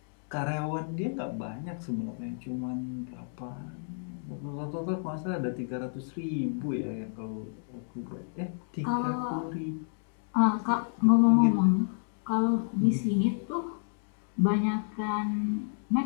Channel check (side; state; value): right; silent; digital silence